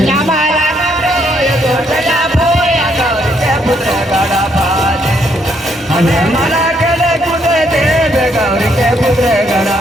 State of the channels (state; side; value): normal; both; correlation 0.72